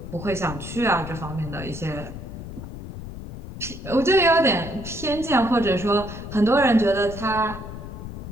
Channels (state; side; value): noise; left; rumble, 10 dB below the sound